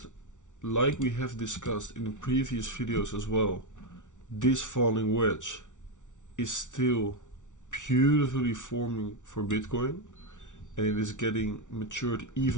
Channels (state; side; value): late; right; 0.86 ms